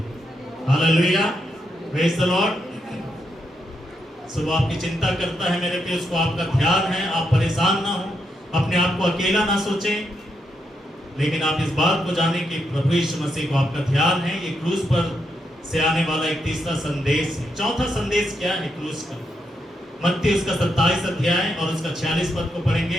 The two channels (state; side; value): normal; both; correlation 0.81